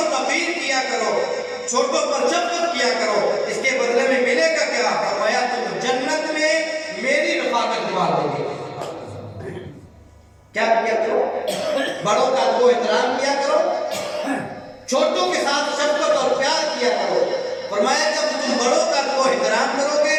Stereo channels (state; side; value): identical; both; correlation 1.00